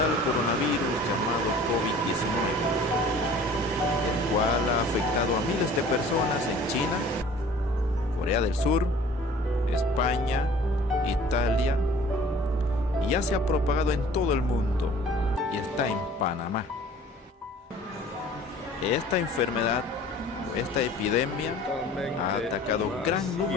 coronavirus llamado COVID-19, el cual ha afectado a miles de personas en China, Corea del Sur, España, Italia, y ya se ha propagado en todo el mundo y está en Panamá. Esta enfermedad, esta epidemia, ha atacado gran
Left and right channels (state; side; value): normal; both; correlation 0.48